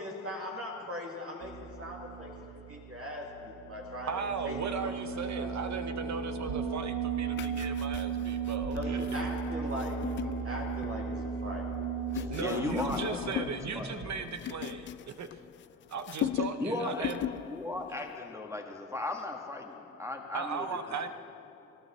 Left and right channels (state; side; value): normal; both; correlation 0.20